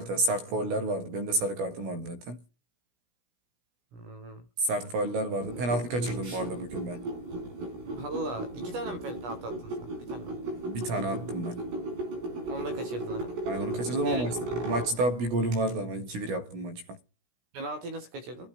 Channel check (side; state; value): left; late; 16 ms